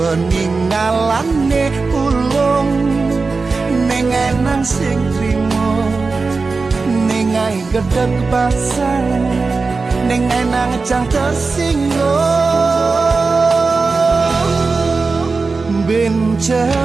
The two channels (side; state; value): left; quieter; 4.2 dB